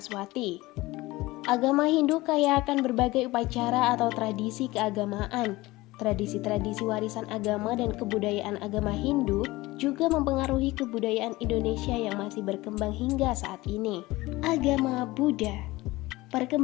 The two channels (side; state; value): right; quieter; 19.8 dB